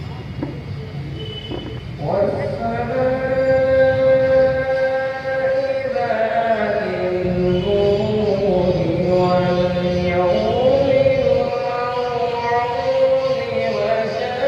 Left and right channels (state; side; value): identical; both; correlation 1.00